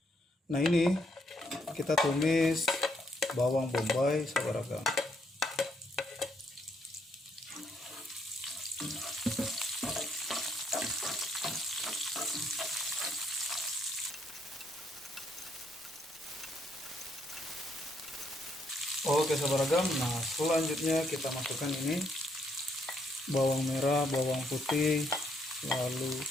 Nah ini kita tumis bawang bombay sahabat ragam. Oke sahabat ragam, nah selanjutnya kita masukkan ini bawang merah, bawang putih, lalu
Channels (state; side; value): normal; both; correlation 0.73